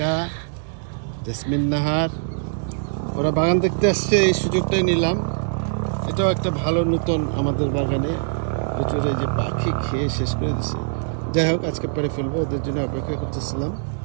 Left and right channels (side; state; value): left; silent; 64 dB below the other